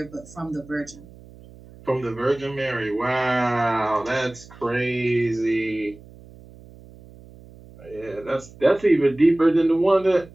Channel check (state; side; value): noise; right; hum, 21 dB below the sound